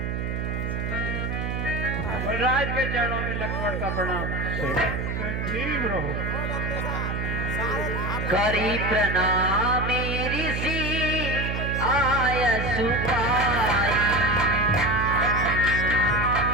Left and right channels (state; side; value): noise; right; hum, 2 dB below the sound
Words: मुनिराज के चरणों में लक्ष्मण का प्रणाम। संजीव रहो। करी प्रणाम ऋषि आय सुपाई।